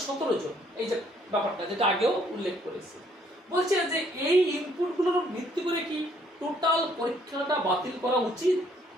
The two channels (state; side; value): normal; both; correlation 0.66